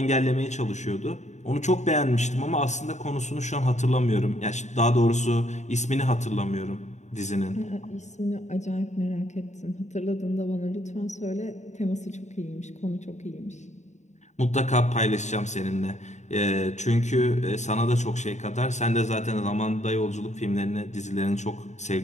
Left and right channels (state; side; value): late; right; 0.34 ms